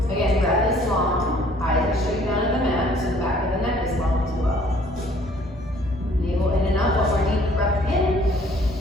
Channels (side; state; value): both; normal; correlation 0.58